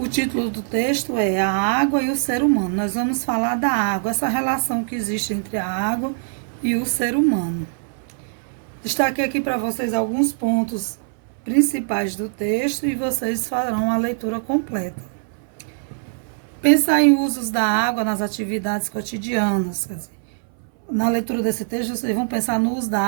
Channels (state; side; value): silent; left; 64 dB below the other